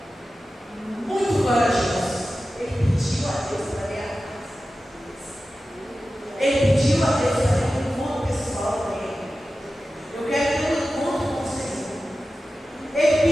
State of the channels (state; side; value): normal; both; correlation 0.94